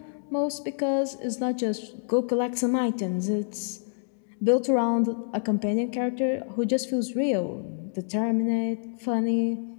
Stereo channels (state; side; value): silent; right; digital silence